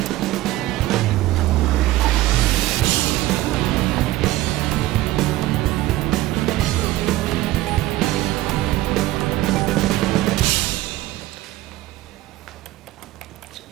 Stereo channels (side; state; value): left; quieter; 16.6 dB